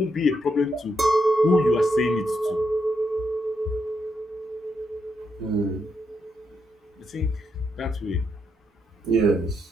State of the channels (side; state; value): both; normal; correlation 0.80